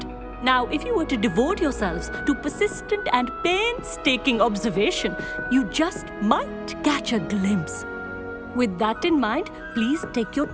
Now, if you were to devote yourselves to persistent and painstaking observation, you just might catch a glimpse. With that in mind, please take your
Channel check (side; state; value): both; identical; correlation 1.00